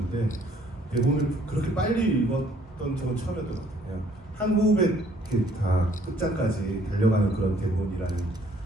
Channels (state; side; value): normal; both; correlation 0.61